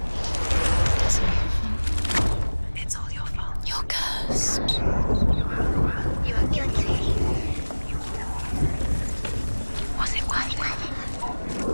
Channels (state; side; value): inverted; both; correlation -1.00